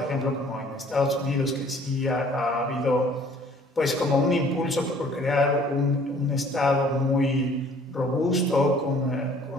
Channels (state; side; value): normal; both; correlation 0.55